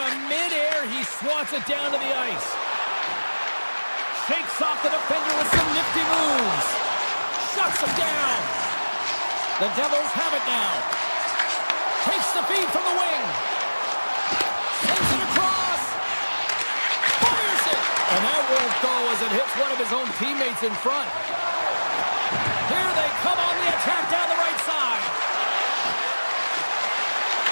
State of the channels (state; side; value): inverted; both; correlation -1.00